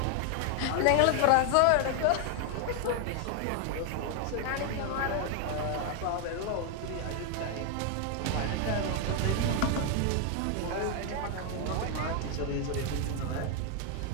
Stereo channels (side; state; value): both; different; correlation 0.00